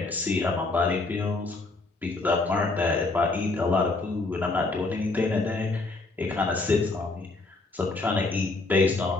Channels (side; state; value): right; quieter; 3.4 dB